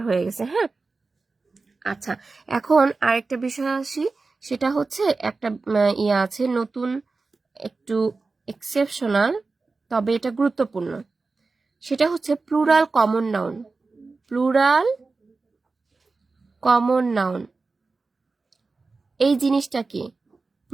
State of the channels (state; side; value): quieter; left; 3.9 dB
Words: হয়ে গেছে। হ্যাঁ, আচ্ছা, এখন আরেকটা বিষয় আসি। সেটা হচ্ছে একটা ইয়ে আছে নতুন, একটু এক্সেপশনাল, তবে এটা গুরুত্বপূর্ণ। সেটা হচ্ছে plural common noun. Plural common noun এই জিনিসটা কি?